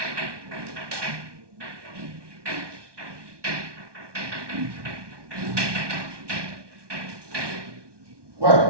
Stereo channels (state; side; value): late; left; 1.2 ms